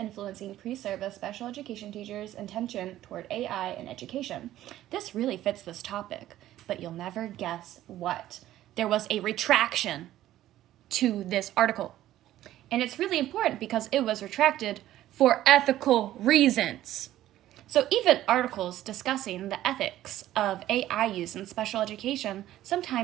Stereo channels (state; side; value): quieter; left; 13.7 dB